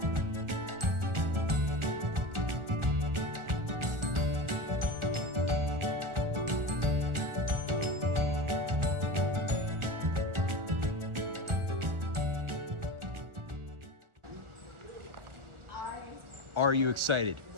Are you excited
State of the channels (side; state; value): left; late; 1.4 ms